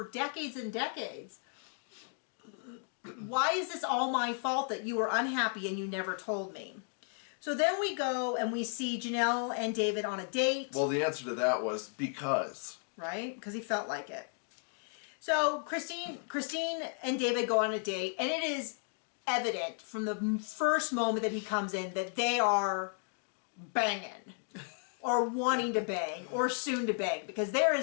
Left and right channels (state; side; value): silent; right; 55 dB below the other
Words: decades and decades. Why is this all my fault that you were unhappy and you never told me? So then we go and we see Janelle and David on a date. Well, the answer to that was because. Right? Because he felt like it. So Christine and David go on a date, and it is evident from the first moment that he comes in that they are banging or wanting to bang or soon to bang, because there